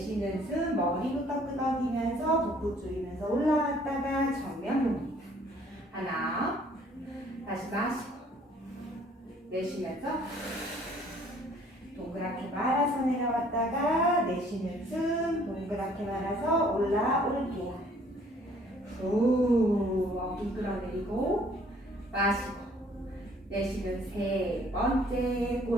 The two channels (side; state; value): both; normal; correlation 0.59